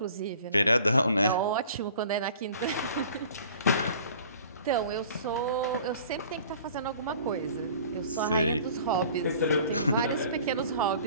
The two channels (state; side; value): inverted; both; correlation -0.49